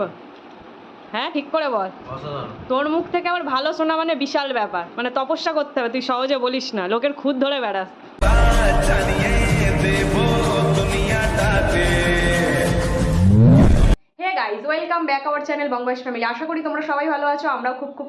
হ্যাঁ ঠিক করে বল। তোর মুখ থেকে আবার ভালো শোনা মানে বিশাল ব্যাপার, মানে তপস্যা করতে হবে, তুই সহজে বলিস না, লোকের খুদ ধরে বেড়াস। Hey guys, welcome back our channel Bangabas family. আশা করি তোমরা সবাই ভালো আছো, আমরাও খুব খুব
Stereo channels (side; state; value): both; identical; correlation 1.00